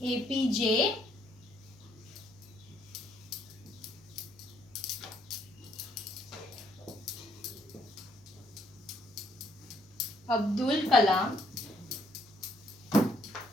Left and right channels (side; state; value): left; noise; hum, 28 dB below the sound